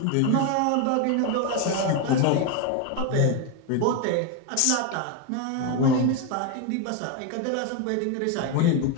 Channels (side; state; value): both; different; correlation 0.02